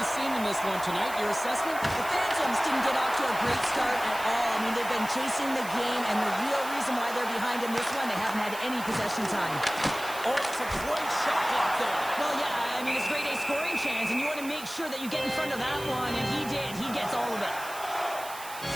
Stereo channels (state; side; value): noise; right; hiss, 13 dB below the sound